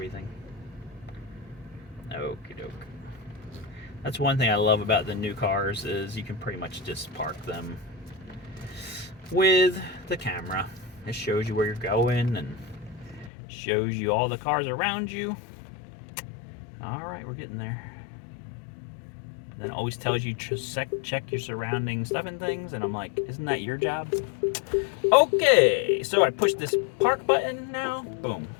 Okie doke. That's one thing I love about the new cars is you can pretty much just park them with the camera. It shows you where you're going and shows you all the cars around you. All right, we're getting there. then it always tells you to check your surrounding stuff and things, and I'm like, isn't that your job? Okay, so I push this park button now. Boom,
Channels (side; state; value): right; drops out; at 13.3 s